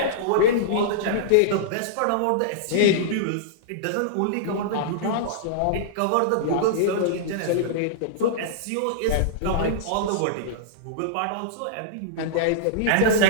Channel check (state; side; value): different; both; correlation -0.02